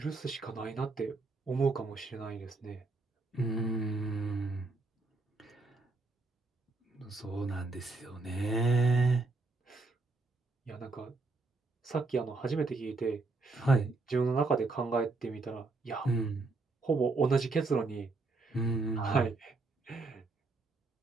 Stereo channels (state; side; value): quieter; left; 3.6 dB